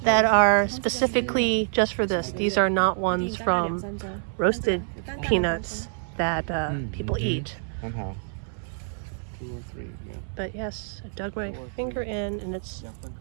that are specifically just for this. These are not ones from roasted peanuts that people eat. Somehow. 2 or 3, yeah. But yes, I dug my finger in and it's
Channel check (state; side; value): silent; left; 61 dB below the other